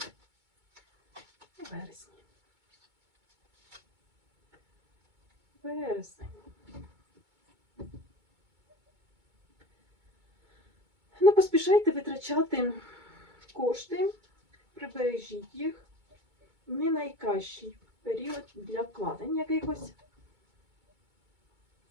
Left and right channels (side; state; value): left; late; 2.2 ms